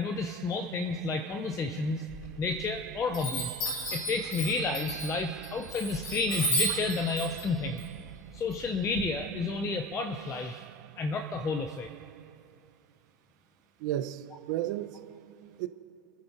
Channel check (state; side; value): normal; both; correlation 0.34